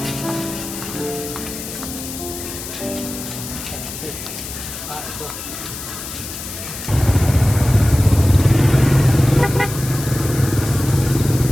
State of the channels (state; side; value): noise; left; hiss, 9 dB below the sound